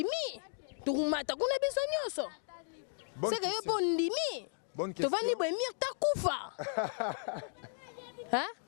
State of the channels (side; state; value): right; silent; digital silence